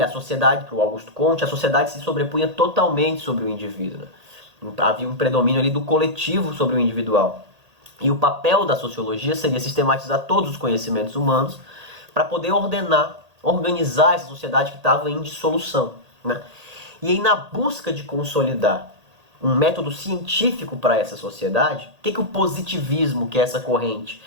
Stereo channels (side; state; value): left; late; 1.8 ms